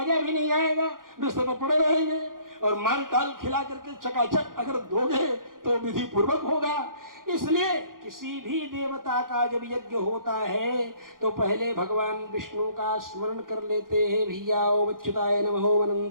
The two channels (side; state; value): left; late; 0.90 ms